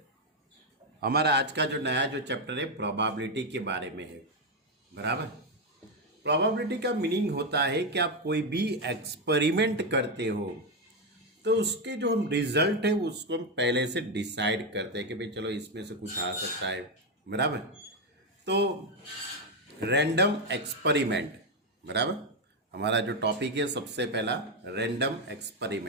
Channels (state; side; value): normal; both; correlation 0.06